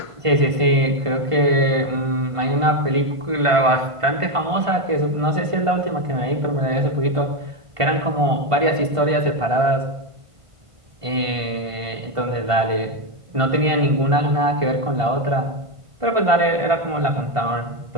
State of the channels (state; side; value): late; left; 1.5 ms